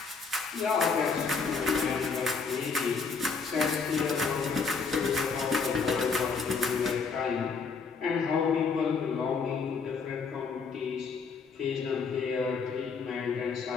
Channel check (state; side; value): quieter; right; 5.1 dB